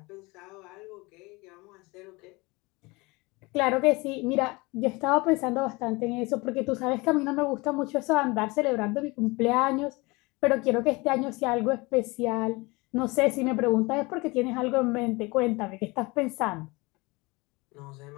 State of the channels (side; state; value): right; quieter; 24.6 dB